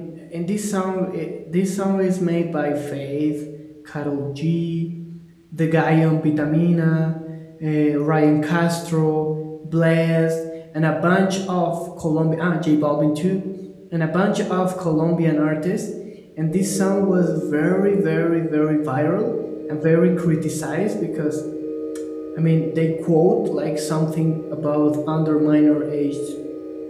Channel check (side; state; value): both; identical; correlation 1.00